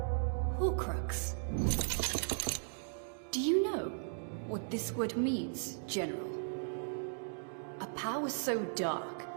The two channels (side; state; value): left; silent; digital silence